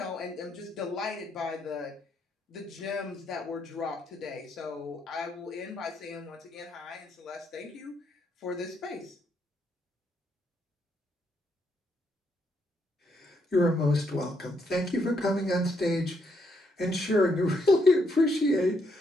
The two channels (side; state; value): both; normal; correlation 0.76